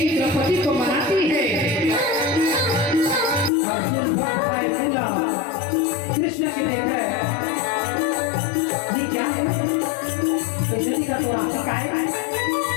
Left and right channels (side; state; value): right; drops out; at 3.5 s